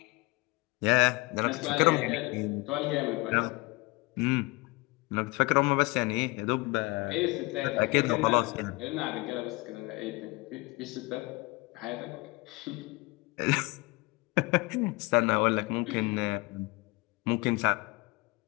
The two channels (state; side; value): quieter; right; 24.7 dB